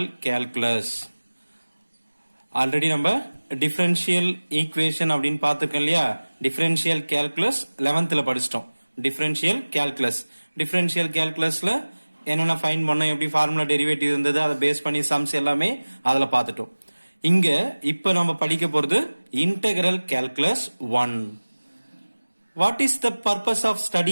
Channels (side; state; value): both; inverted; correlation -1.00